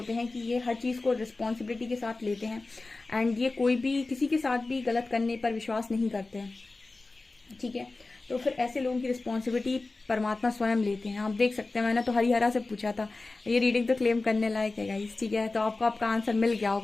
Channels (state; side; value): quieter; right; 3.4 dB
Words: हैं कि ये हर चीज़ को रिस्पॉन्सिबिलिटी के साथ लेते हैं, एंड ये कोई भी किसी के साथ भी गलत करने पर विश्वास नहीं करते हैं, ठीक है। तो फिर ऐसे लोगों की रिस्पॉन्सिबिलिटी परमात्मा स्वयं लेते हैं। आप देख सकते हैं, मैंने तो हरिहरा से पूछा था, ये रीडिंग तो क्लेम करने लायक है गाइस, ठीक है। तो आपको आपका आंसर मिल गया